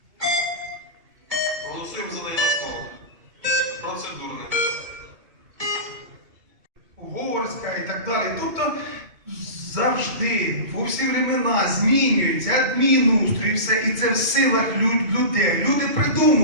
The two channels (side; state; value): left; late; 2.2 ms